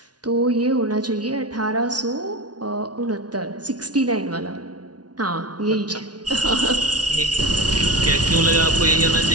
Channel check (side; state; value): left; late; 0.69 ms